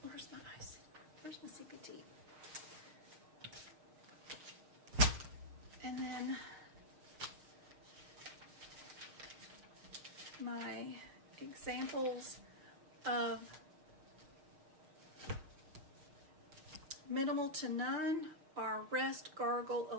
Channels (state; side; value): late; left; 6.5 ms